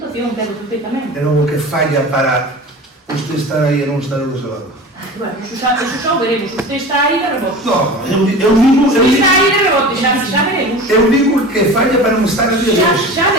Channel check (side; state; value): both; normal; correlation 0.35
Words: pero perfectamente. É o que falla para usted estar aí e non estar do seu lado. Bueno, eso xa o veremos. Usted está aí de rebote. No, eu digo... Usted está aí de rebote, xa veremos. Eu digo que falla para non estar aquí de hoxe. Xa